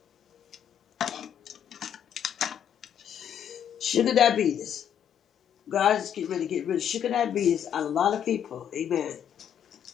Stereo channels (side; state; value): right; quieter; 9.2 dB